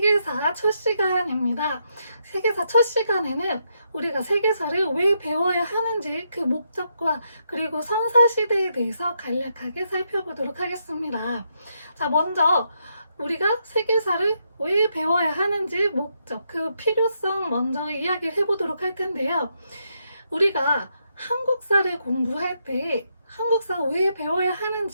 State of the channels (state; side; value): inverted; both; correlation -0.79